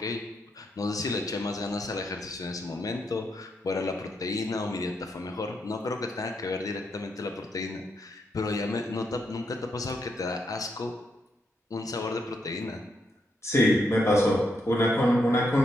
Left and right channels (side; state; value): both; normal; correlation 0.80